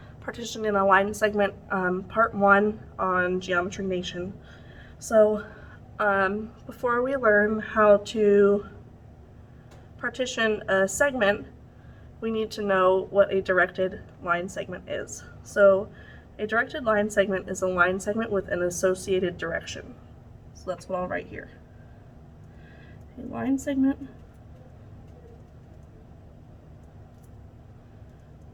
partition in a line segment part 1 on Geometry Nation. So before we learn how to partition a segment, we need to know what a directed line segment is. So a directed line segment is a line segment with an associated direction. So that's what I'll write here. A line segment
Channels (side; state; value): both; identical; correlation 1.00